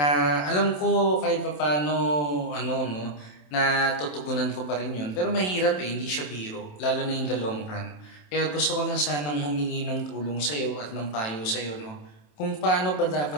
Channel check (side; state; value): right; late; 27 ms